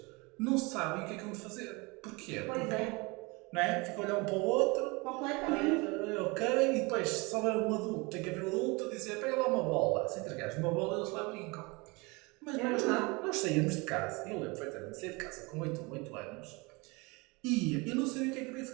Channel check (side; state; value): left; quieter; 26.8 dB